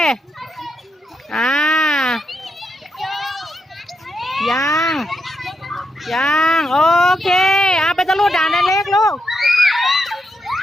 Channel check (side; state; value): both; normal; correlation 0.82